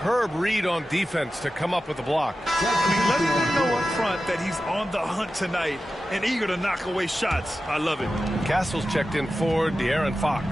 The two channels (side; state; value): both; normal; correlation 0.93